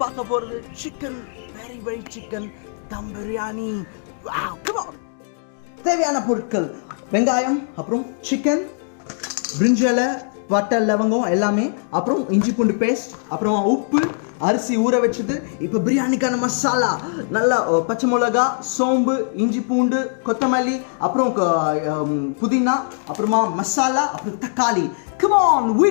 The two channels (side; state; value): right; silent; digital silence